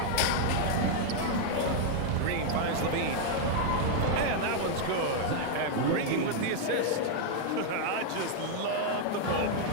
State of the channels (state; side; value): different; both; correlation 0.00